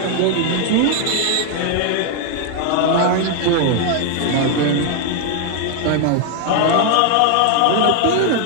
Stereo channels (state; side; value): different; both; correlation 0.00